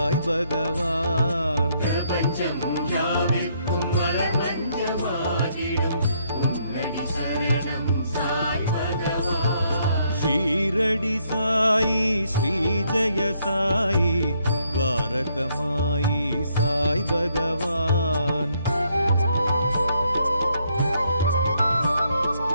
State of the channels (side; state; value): both; inverted; correlation -0.72